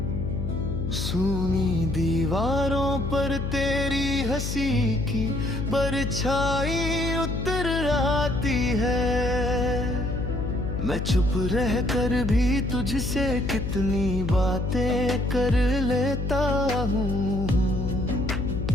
सूनी दीवारों पर तेरी हंसी की परछाई उतर आती है। मैं चुप रह कर भी तुझसे कितनी बातें कर लेता हूँ।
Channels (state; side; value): noise; left; hum, 3 dB below the sound